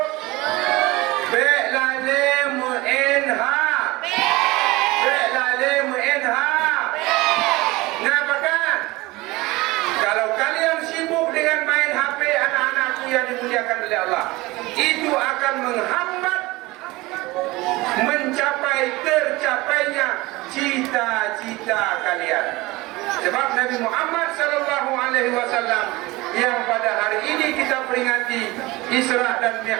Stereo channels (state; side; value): quieter; left; 21.2 dB